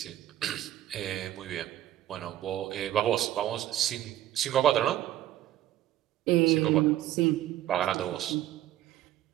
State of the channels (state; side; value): quieter; left; 13.3 dB